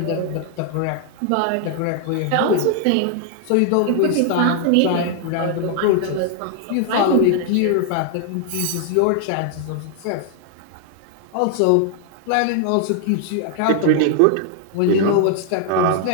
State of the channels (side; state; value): both; different; correlation 0.00